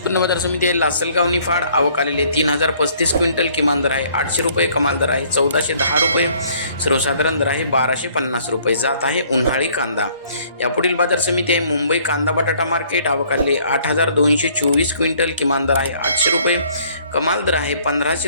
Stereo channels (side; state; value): both; inverted; correlation -0.60